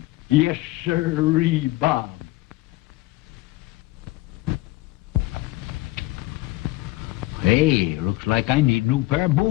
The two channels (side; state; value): right; quieter; 19.4 dB